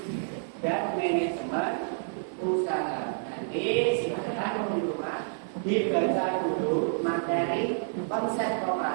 dan manajemen usaha. Nanti silakan teman-teman dibaca dulu materi konsep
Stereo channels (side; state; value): left; silent; digital silence